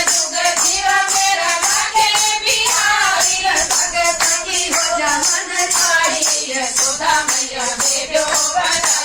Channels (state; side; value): identical; both; correlation 1.00